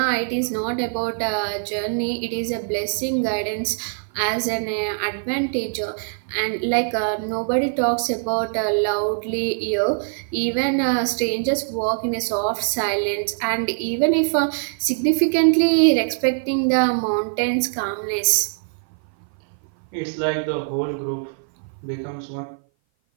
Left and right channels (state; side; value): silent; left; 57 dB below the other